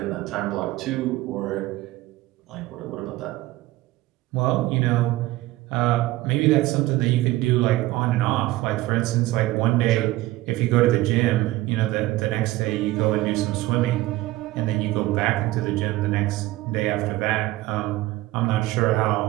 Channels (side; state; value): left; quieter; 17.7 dB